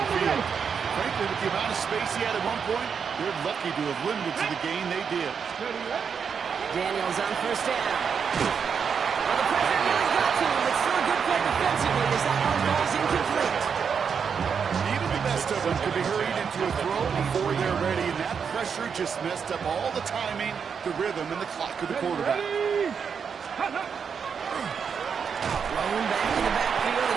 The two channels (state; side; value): quieter; left; 6.6 dB